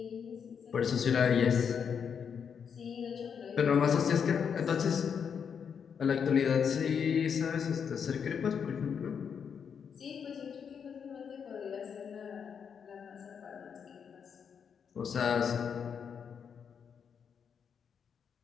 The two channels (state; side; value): quieter; right; 7.1 dB